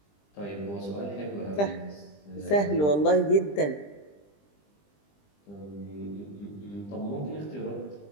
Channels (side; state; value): right; late; 20 ms